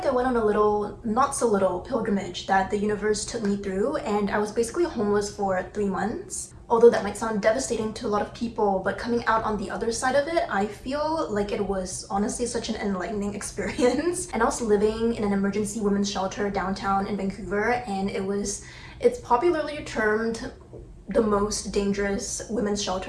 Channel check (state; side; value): identical; both; correlation 1.00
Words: I went on a little, not so little, pilgrimage that the universe took me through, and I was basically homeless for 3 months. Although that might sound devastating to a lot of people, but coming out on the other side of it, I feel like it was honestly such an enlightening experience. And I was living in an emergency women's shelter downtown in Vancouver, and it's popularly termed the most dangerous women's